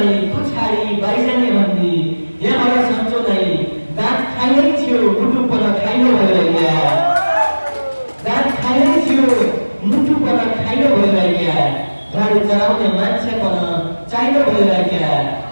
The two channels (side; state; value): both; inverted; correlation -1.00